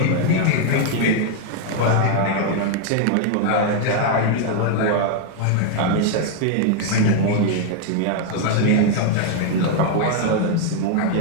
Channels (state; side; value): different; both; correlation 0.00